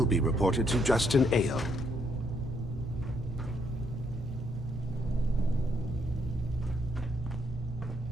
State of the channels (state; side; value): normal; both; correlation 0.73